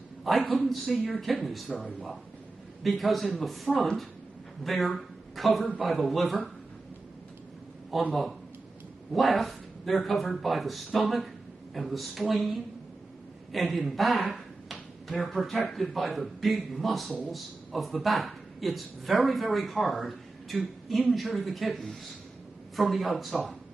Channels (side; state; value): left; quieter; 3.3 dB